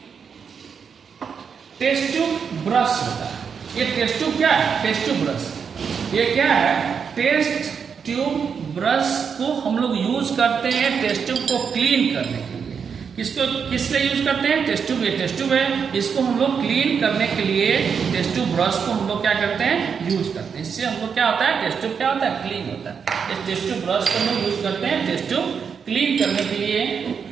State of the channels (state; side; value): quieter; left; 6.5 dB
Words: टेस्ट ट्यूब ब्रश होता है। ये टेस्ट ट्यूब क्या है, टेस्ट ट्यूब ब्रश, ये क्या है, टेस्ट ट्यूब ब्रश को हम लोग यूज करते हैं टेस्ट ट्यूब को क्लीन करने के लिए। किसको किस लिए यूज करते हैं, टेस्ट ट्यूब, ये टेस्ट ट्यूब है, इसको हम लोग क्लीन करने के लिए टेस्ट ट्यूब ब्रश को हम लोग क्या करते हैं, यूज करते हैं। इससे हम लोग क्या होता है, टेस्ट ट्यूब क्या होता है, क्लीन होता है। इस टेस्ट ट्यूब ब्रश को हम लोग यूज करते हैं टेस्ट ट्यूब क्लीन करने के लिए।